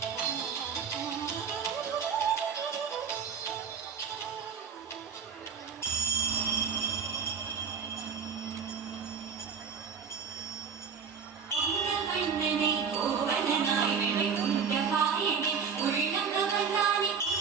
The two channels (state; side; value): quieter; left; 6.4 dB